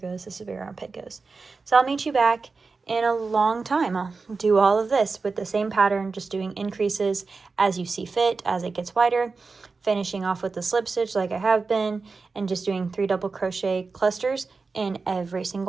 this is where your armpit goes. So I'll meet you back in a long time. I'll do all of this with the same pattern, just doing increases as you see fit, as it gets wider, finishing off with the slip stitch like I have been, and just doing 3 double crochet clusters in every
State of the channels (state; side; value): quieter; left; 4.3 dB